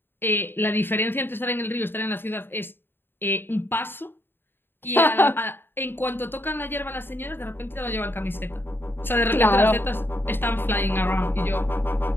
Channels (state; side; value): late; right; 0.10 ms